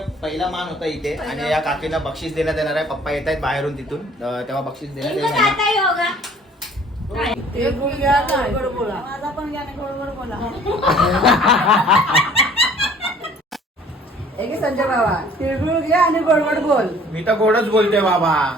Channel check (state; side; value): normal; both; correlation 0.53